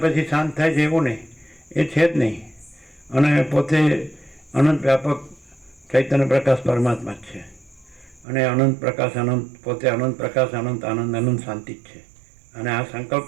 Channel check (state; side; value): drops out; left; at 8.2 s